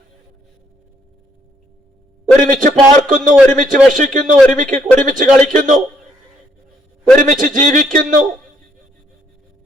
ഒരുമിച്ച് പാർക്കുന്നു, ഒരുമിച്ച് ഭക്ഷിക്കുന്നു, ഒരുമിച്ച് കളിക്കുന്നു, ഒരുമിച്ച് ജീവിക്കുന്നു.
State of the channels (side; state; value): both; normal; correlation 0.69